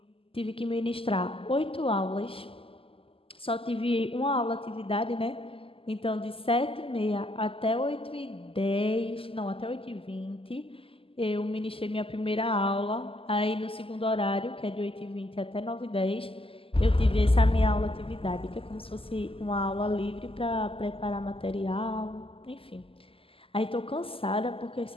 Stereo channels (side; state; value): right; late; 0.26 ms